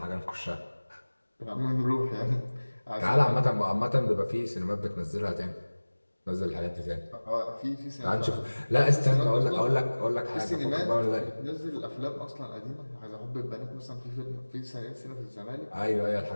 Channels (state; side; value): inverted; both; correlation -1.00